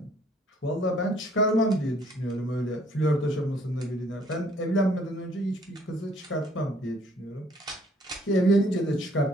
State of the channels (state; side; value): normal; both; correlation 0.61